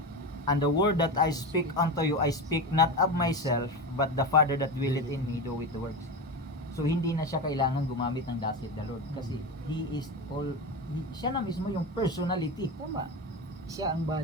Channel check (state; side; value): normal; both; correlation 0.21